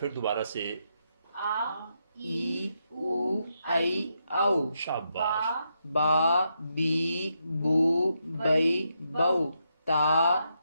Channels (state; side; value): inverted; both; correlation -0.82